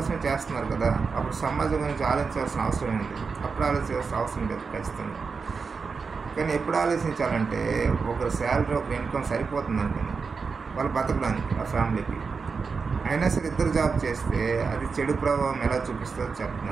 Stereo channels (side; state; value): left; quieter; 5.0 dB